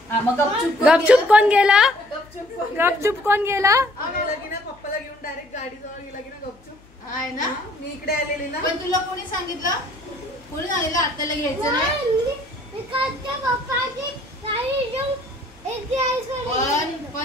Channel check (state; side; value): noise; left; hum, 28 dB below the sound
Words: हा मग गपचूप गपचूप कोण गेला? गपचूप गपचूप कोण गेला? गेला की ना, पप्पाला घेऊन डायरेक्ट गाडीजवळ गेला की ना गपचूप. आहे ना. मी इकडे आलेली ना. पण तुला कोणी सांगितलं? कोणी सांगितलं आत्याला घ्यायचं नाही?